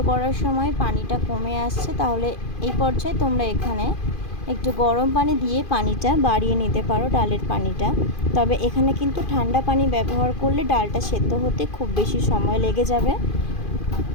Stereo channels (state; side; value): late; right; 2.5 ms